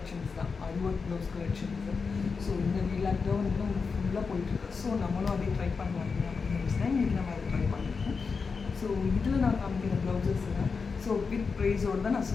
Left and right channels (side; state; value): right; quieter; 5.0 dB